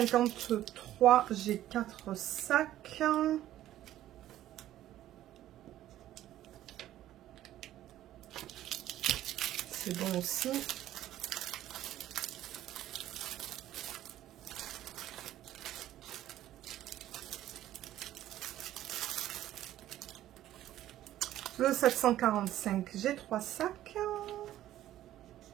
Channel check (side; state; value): left; quieter; 13.3 dB